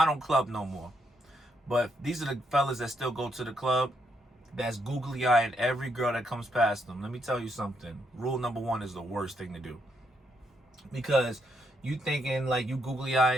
don't club no more, but these are the fellas that still go to the club, that's googly eyeing every girl that comes past them. Let me tell you something. Rule number one is the worst thing to do, because you thinking like you googly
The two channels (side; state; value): both; normal; correlation 0.77